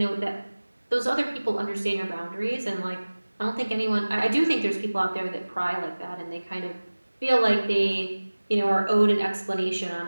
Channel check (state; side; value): inverted; both; correlation -1.00